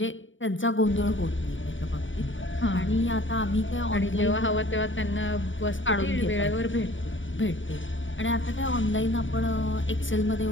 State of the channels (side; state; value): right; late; 0.56 ms